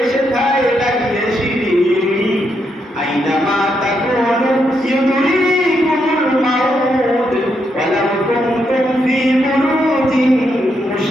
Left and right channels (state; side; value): normal; both; correlation 0.80